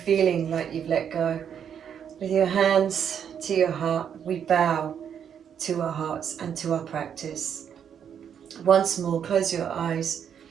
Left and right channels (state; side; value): quieter; left; 8.3 dB